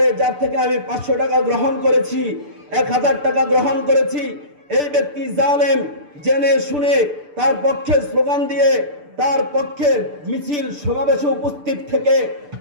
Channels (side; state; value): left; late; 6.8 ms